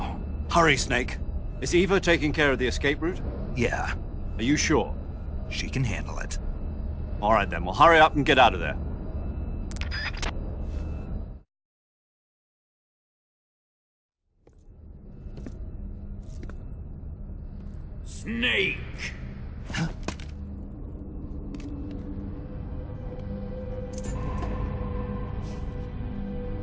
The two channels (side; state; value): both; identical; correlation 1.00